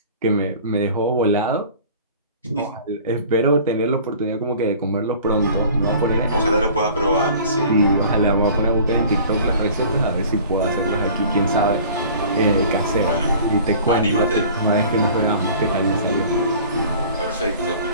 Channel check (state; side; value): inverted; both; correlation -0.46